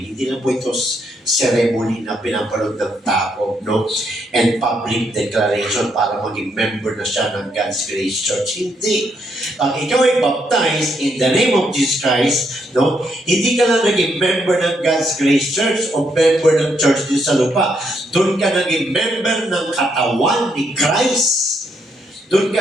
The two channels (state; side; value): normal; both; correlation 0.76